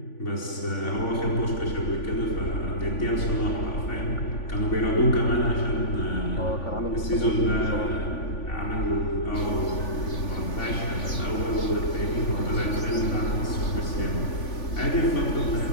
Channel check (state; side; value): late; right; 3.5 ms